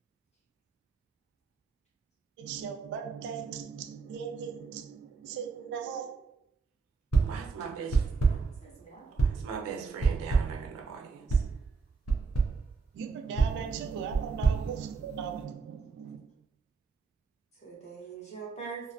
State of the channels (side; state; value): left; quieter; 4.8 dB